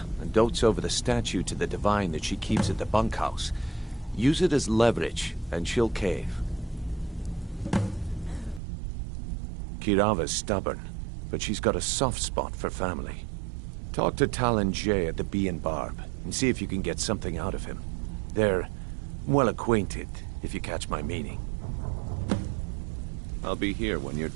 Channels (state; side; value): drops out; left; at 8.6 s